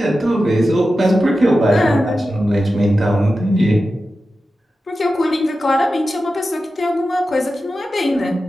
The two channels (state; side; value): normal; both; correlation 0.92